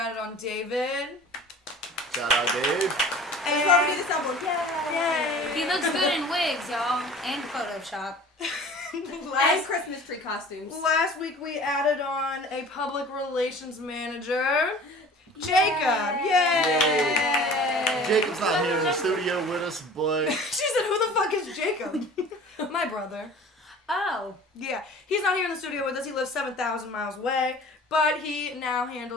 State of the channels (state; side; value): normal; both; correlation 0.44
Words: on David. Shout out, Dave. That's why we need this album. Yay! He looks good in wigs, y'all, and Photoshop. And last, Christmas tree costumes. last week we added on a public relations manager. Jacob. Yay! Jacob's not here in the studio with us, but She said, who the fuck is Jacob? My brother. Oh. Yeah, he's not here in the studio with us. He lives 7,000 miles away, but he now